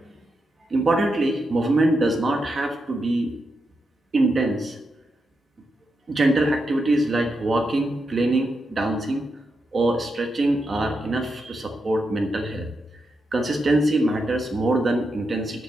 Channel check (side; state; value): both; normal; correlation 0.85